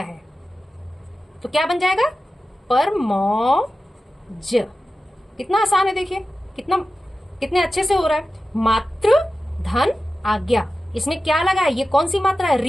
तो क्या बन जाएगा परमौज। कितना आसान है, देखिए कितने अच्छे से हो रहा है। मातृ धन आज्ञा, इसमें क्या लगा है, ये कौन सी मात्रा है,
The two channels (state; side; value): normal; both; correlation 0.94